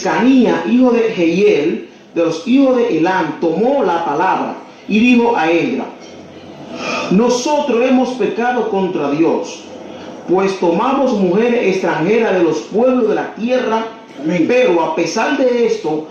hijo de Jehiel, de los hijos de Elam, tomó la palabra y dijo a Esdras: nosotros hemos pecado contra Dios, pues tomamos mujeres extranjeras de los pueblos de la tierra. Amén. Pero a pesar de esto,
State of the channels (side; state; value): both; identical; correlation 1.00